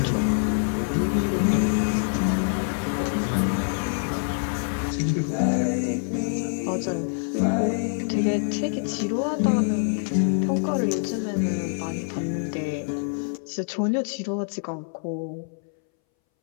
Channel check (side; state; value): right; silent; 61 dB below the other